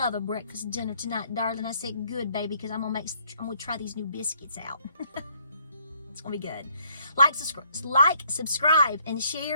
a breakfast dinner tonight, darling. I said, good, baby, because I'm going to try these new biscuits out. It's going to be good. Like, subscribe, and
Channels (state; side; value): inverted; both; correlation -0.66